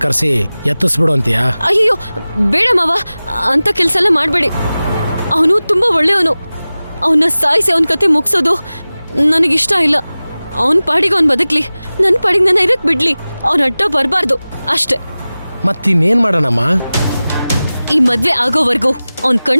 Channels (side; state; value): both; inverted; correlation -0.97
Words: ಕರೆಸಿ ಎತ್ತಿಸ್ಬಿಡು ಅಂತೀಯ? ಅಯ್ಯೋ ಬೇಡ ಮಾವ, ಅಂತ ಕೆಲ್ಸ ಎಲ್ಲ ಮಾಡ್ಬೇಡಿ. ಅವನು ತುಂಬಾ ಒಳ್ಳೆಯವನು. ಅವನ್ನ ಸಾಯಿಸಿ ಅವನ ಕತೆ ಮುಗಿಸೋದು ನನಗಿಷ್ಟ ಇಲ್ಲ. ಅವನ್ ಪಾಡಿಗೆ ಅವ್ನ್ ಬದುಕ್ಲಿ, ನನ್ ಪಾಡಿಗೆ ನನ್ನ ಇರಕ್ ಬಿಡ್ಲಿ. ಅವನ ಅಡ್ಡ ಬರ್ಬಾರ್ದು ಅಷ್ಟೇ. ಮತ್ತಿನ್ನೇನ್ ಮಾಡೋಣಮ್ಮ? ಈ ಮದ್ವೆ ಆಗೋವರೆಗೂ ಅವನ್